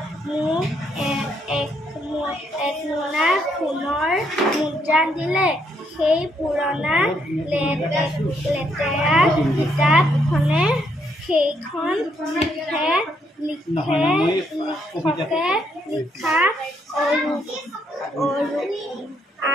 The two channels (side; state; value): both; normal; correlation 0.74